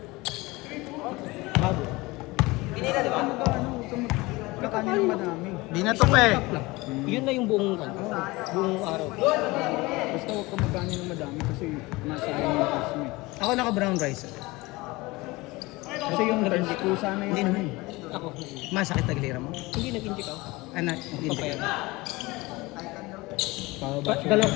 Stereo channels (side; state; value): right; quieter; 22.1 dB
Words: kanin ng madami. Binato pa eh. Cup lang. Yun na yung buong araw. Basta huwag ka magkanin ng madami kasi masayang yung carbs mo. Ako naka-brown rice. Kasi yung rice ko sana yung ano eh. Ako, Masakit taglira mo? hindi nag-inject ako. Anak, hindi. Papaya. Pababa siya. Dalawang